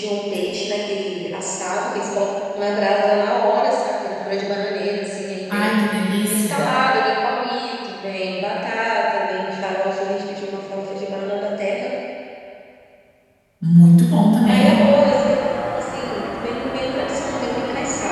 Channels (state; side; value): identical; both; correlation 1.00